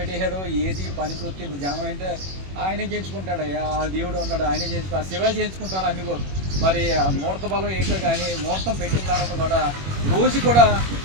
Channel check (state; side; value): late; left; 21 ms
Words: ఏది పని చూస్తే జనం అంటే ఆయనే చేయించుకుంటాడు, ఆ దేవుడు ఉన్నాడు ఆయనే చేయించుకో, ఆ శివ చేయించుకుంటాడు అన్ని కూడా. మరి ఆ ముహూర్త బలం ఏంటో కానీ ముహూర్తం పెట్టిన తర్వాత కూడా రోజు కూడా